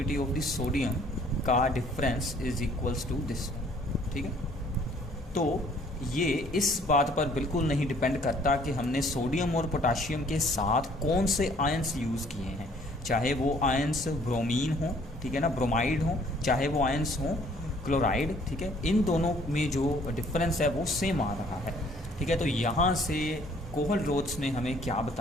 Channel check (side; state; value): both; normal; correlation 0.59